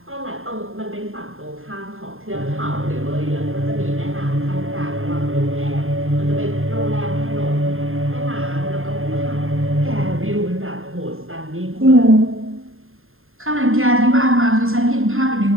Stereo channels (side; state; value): left; late; 0.61 ms